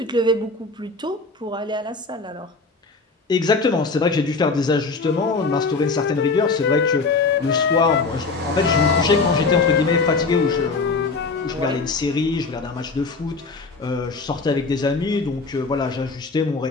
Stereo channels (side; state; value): right; quieter; 4.0 dB